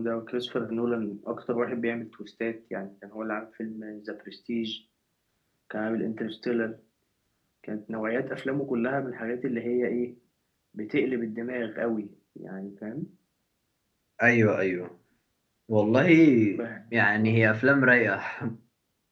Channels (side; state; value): both; identical; correlation 1.00